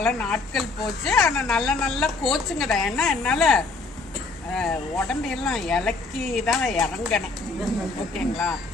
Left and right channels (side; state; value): right; quieter; 3.7 dB